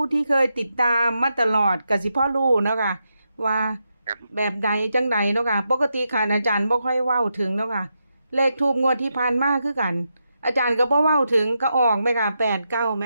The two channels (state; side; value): inverted; both; correlation -0.85